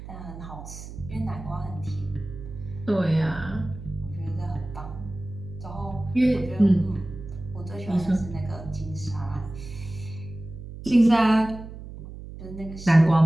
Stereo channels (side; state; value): right; noise; hum, 12 dB below the sound